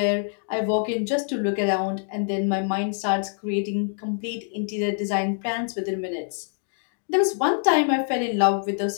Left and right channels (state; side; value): silent; right; 62 dB below the other